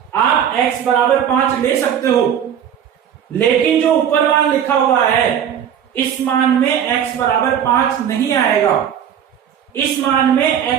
आप x बराबर 5 ले सकते हो, लेकिन जो ऊपर मान लिखा हुआ है इस मान में x बराबर 5 नहीं आएगा। इस मान में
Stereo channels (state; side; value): quieter; left; 9.0 dB